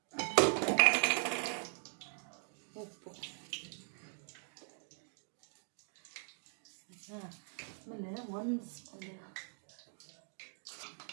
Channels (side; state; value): left; silent; 51 dB below the other